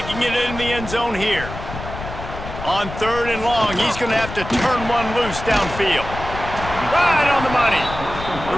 it in the end zone here. On 3rd and long, he's going to have to turn one loose downfield. Right on the money. The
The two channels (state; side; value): noise; left; rumble, 10 dB below the sound